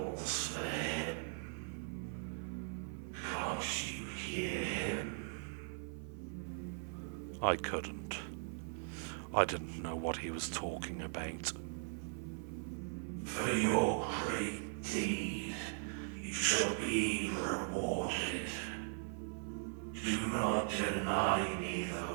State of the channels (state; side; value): silent; left; 51 dB below the other